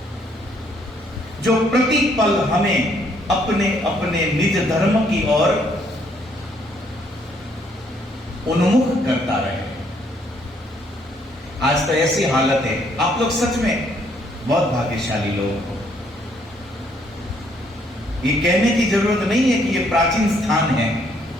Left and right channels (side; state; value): both; normal; correlation 0.68